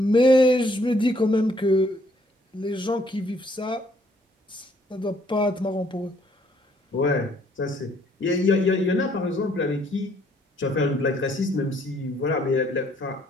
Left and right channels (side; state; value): both; normal; correlation 0.66